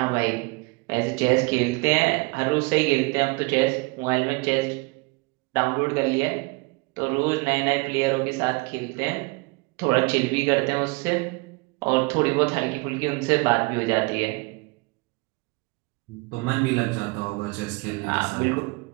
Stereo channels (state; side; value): quieter; left; 27.3 dB